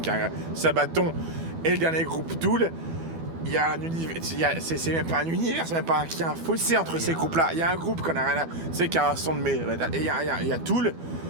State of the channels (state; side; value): late; left; 12 ms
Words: qui a Sabaton, et le dernier groupe Tool. Il y a un univers, c'est même pas un univers, c'est même pas qu'il y a un fossé entre ces groupes-là. Il y a un groupe qu'on a rien à, c'est qui a un son de et il y a Tool.